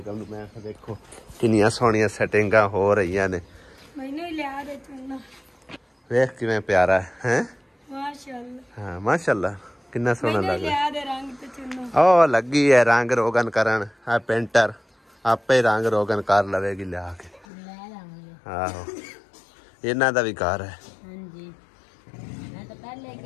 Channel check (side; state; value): right; drops out; at 17.4 s